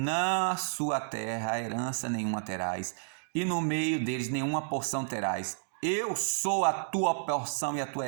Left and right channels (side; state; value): left; silent; digital silence